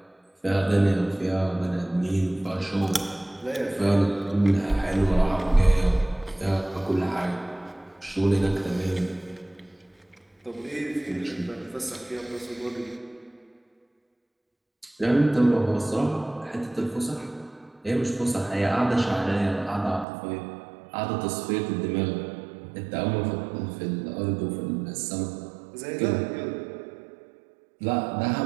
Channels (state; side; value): drops out; left; at 20.1 s